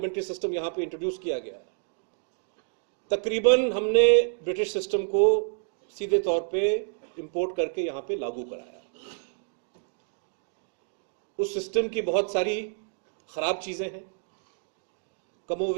सिस्टम यहां पे इंट्रोड्यूस किया गया, तकरीबन हमने ब्रिटिश सिस्टम को सीधे तौर पे इंपोर्ट करके यहां पे लागू कराया। उस सिस्टम की बहुत सारी खराब चीजें हैं,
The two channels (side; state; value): left; silent; digital silence